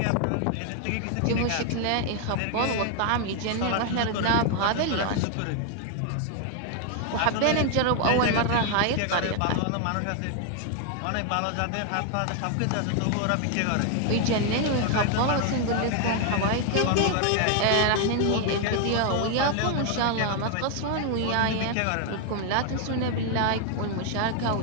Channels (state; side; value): different; both; correlation 0.00